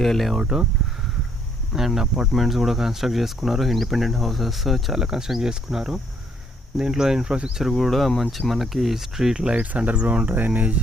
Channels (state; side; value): normal; both; correlation 0.68